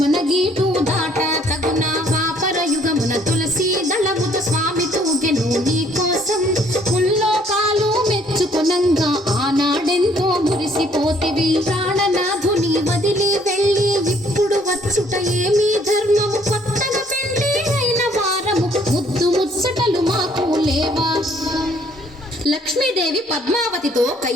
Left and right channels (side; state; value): both; normal; correlation 0.63